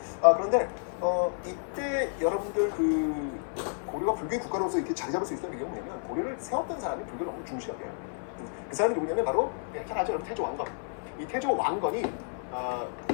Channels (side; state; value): right; silent; 57 dB below the other